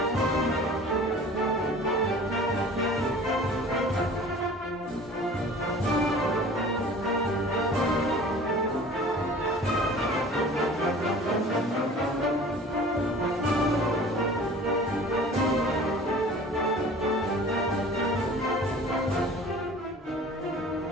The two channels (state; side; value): normal; both; correlation 0.44